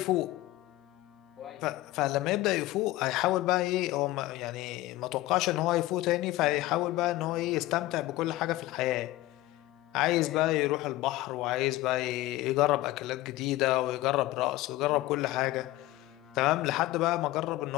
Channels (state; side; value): quieter; right; 17.3 dB